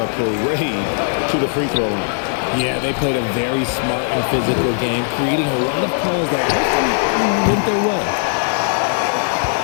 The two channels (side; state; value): right; silent; digital silence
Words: parade to the free throw line. Yeah, they played a very smart and physical game, creating a lot of calls that often went their way.